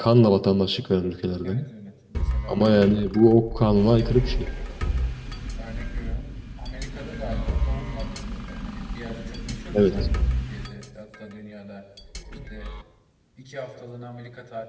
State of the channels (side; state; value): both; identical; correlation 1.00